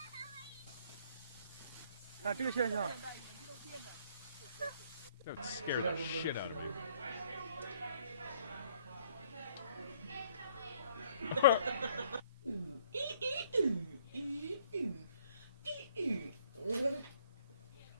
看这个现象。 That would scare the shit out of me.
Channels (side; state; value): both; inverted; correlation -0.63